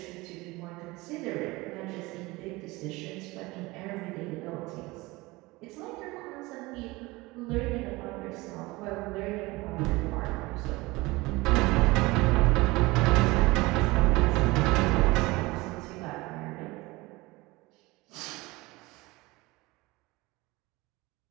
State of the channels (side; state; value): left; quieter; 21.9 dB